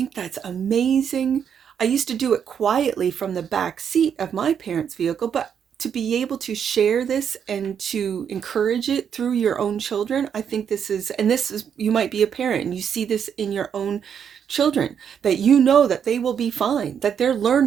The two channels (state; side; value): quieter; left; 7.9 dB